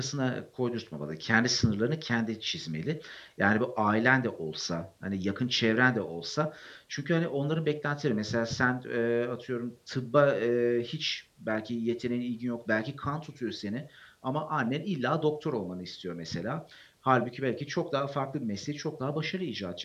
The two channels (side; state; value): both; identical; correlation 1.00